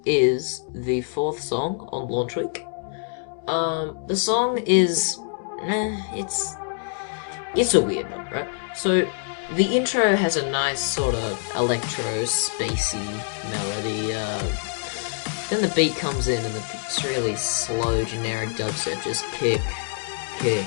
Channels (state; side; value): silent; right; 57 dB below the other